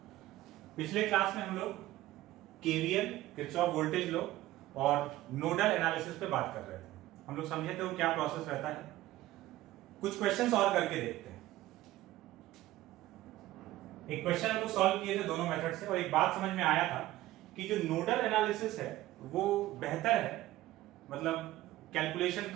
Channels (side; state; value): left; quieter; 16.0 dB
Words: पिछले class में हम लोग केवीएल, किरचॉफ वोल्टेज लॉ और नोडल एनालिसिस पे बात कर रहे थे। हम लोग समझे थे वो क्या प्रोसेस रहता है। कुछ क्वेश्चंस और करके देखते हैं। एक क्वेश्चन हम लोग सॉल्व किए थे दोनों मेथड से और एक बात समझ में आया था कि जो नोडल एनालिसिस है वो बेहतर है, मतलब कैलकुलेशन